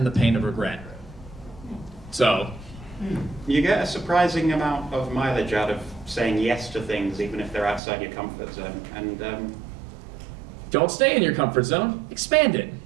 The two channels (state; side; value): drops out; left; at 7.8 s